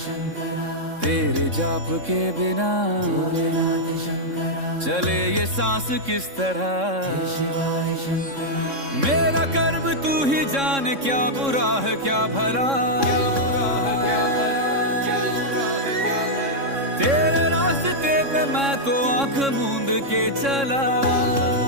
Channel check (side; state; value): left; late; 3.6 ms